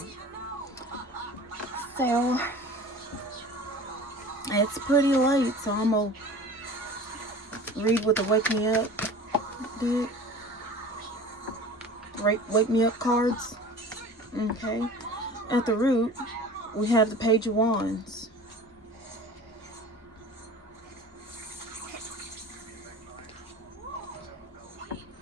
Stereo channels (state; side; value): normal; both; correlation 0.40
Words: So, it's pretty late, so I'm gonna read what the Wake Me Up did. Wake Me Up cards. Okay. At the root, we have the Page of Wands.